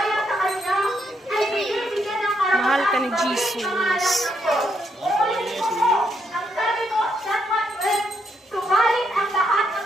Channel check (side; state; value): both; normal; correlation 0.76